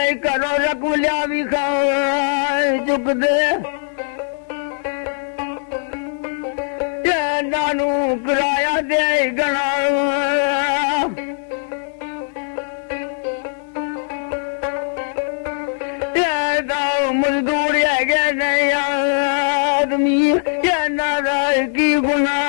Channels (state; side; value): silent; right; digital silence